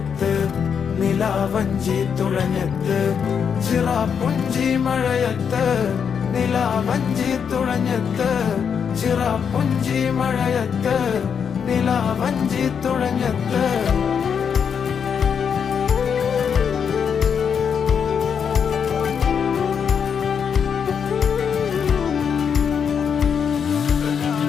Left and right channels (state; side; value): quieter; right; 7.1 dB